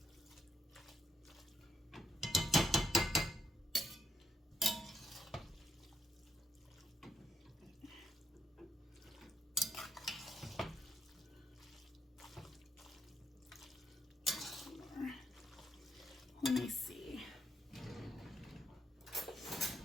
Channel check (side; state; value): both; normal; correlation 0.77